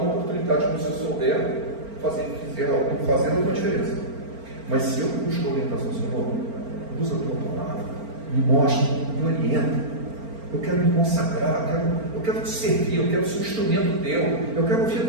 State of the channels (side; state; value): left; late; 4.4 ms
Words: oportunidade que você souber fazer alguma diferença. Mas se eu busco a orientação, Senhor, usa a tua palavra, me mostra, me orienta. Eu quero me consagrar, eu quero te servir, eu quero ser um instrumento teu, eu quero ouvir a